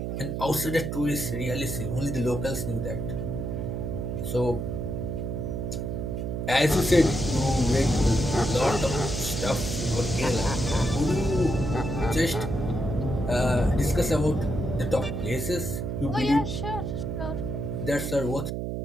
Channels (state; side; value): noise; right; hum, 3 dB below the sound